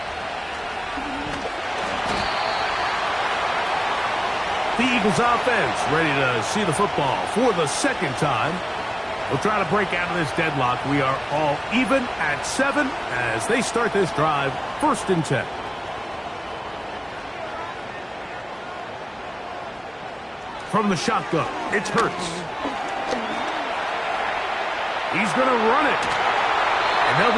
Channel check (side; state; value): both; identical; correlation 1.00